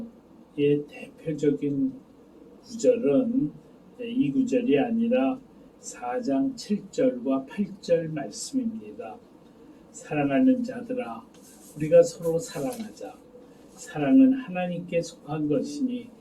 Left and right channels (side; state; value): both; identical; correlation 1.00